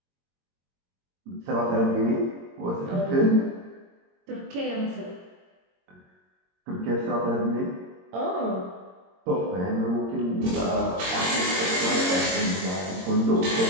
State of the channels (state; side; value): late; left; 22 ms